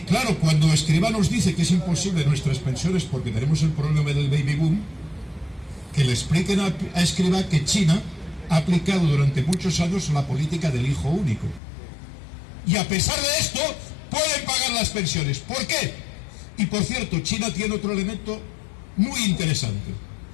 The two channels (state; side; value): drops out; right; at 11.6 s